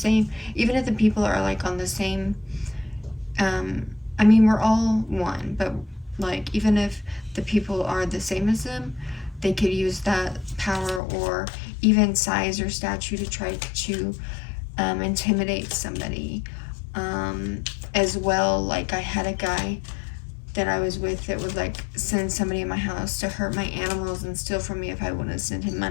people are like on the same I mean, we're all one, but like even if the people are the same as them, they could use that power or even size or stature to try to intimidate somebody as well. Like I had a guy that I was with that would like send somebody in my house to hurt my animals and steal from me if I wouldn't send him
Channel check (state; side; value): drops out; right; at 11.0 s